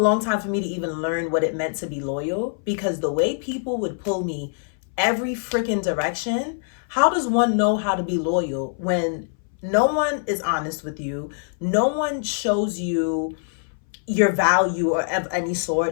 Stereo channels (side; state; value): right; silent; 61 dB below the other